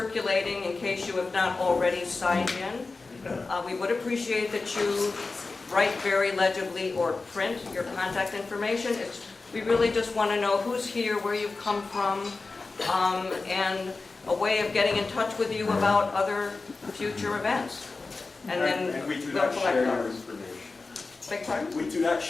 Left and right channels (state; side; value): quieter; right; 3.8 dB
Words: in case you have not already signed in. We would appreciate that you write very legibly or print your contact information. We really just want to know who's here, where you've come from, and a way of getting in touch with you about other future events. And we do not share your information. Beg pardon? We do not